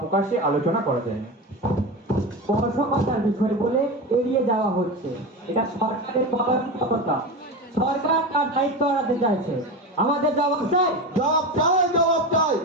প্রকাশ্যে আলোচনা করা যায় না। স্পর্শকতার বিষয় বলে এড়িয়ে যাওয়া হচ্ছে, এটা সরকারের পরামর্শকতা। সরকার তার দায়িত্ব এড়াতে চাইছে। আমাদের জবাব চাই, জবাব চাই, জবাব চাই।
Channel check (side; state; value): both; normal; correlation 0.23